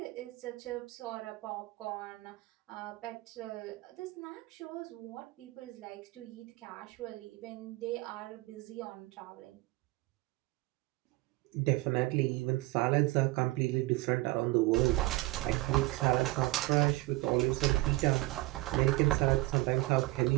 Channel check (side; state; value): left; quieter; 20.8 dB